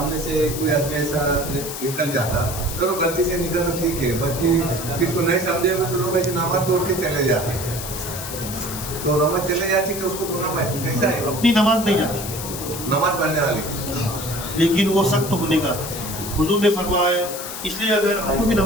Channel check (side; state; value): left; noise; hiss, 8 dB below the sound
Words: سے کوئی آدمی ایسا نکل جاتا، چلو غلطی سے نکل تو ٹھیک ہے، باقی کس کو نہیں سمجھے ہوئے تو لوگ ایسے نماز توڑ کے چلے جاتے ہیں، تو نماز چلے جاتی کہ اس کو پڑھنا پڑے. کیسا ہے اپنی نماز نہیں جاتی، نماز پڑھنے والے؟ لیکن وہ سخت ہونے کا حضور نے فرمایا. اس لیے اگر ہم کو بھی